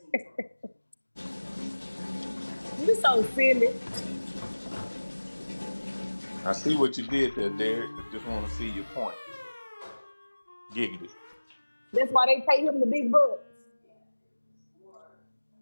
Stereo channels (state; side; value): inverted; both; correlation -1.00